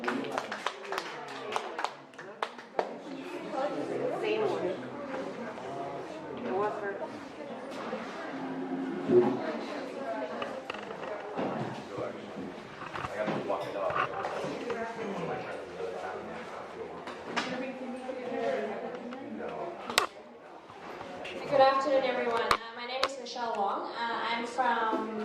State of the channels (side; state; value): both; identical; correlation 1.00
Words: Same one. It was her. Good afternoon, everyone. My name is Michelle Wong. I'm from